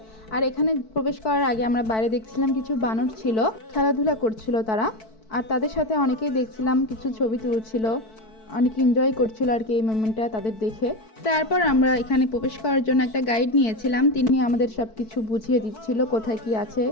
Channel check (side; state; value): right; late; 4.6 ms